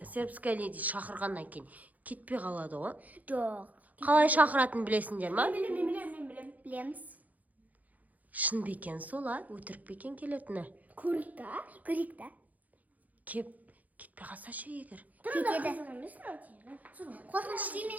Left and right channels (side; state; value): left; late; 0.078 ms